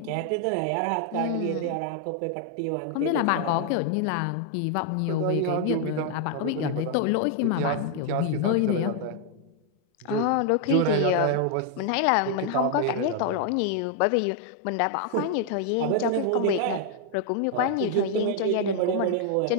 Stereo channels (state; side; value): different; both; correlation 0.00